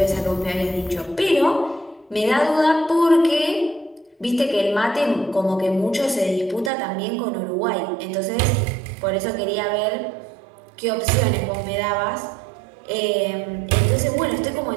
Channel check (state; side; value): drops out; left; at 6.7 s